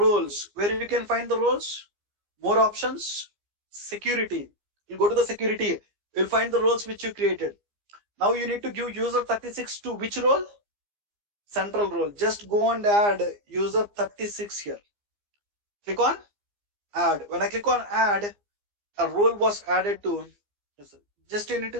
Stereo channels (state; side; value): late; left; 15 ms